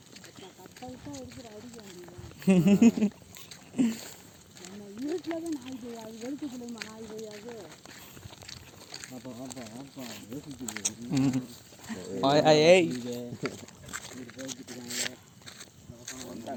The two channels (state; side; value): identical; both; correlation 1.00